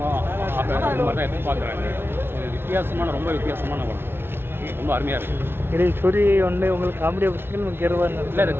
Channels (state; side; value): late; left; 0.11 ms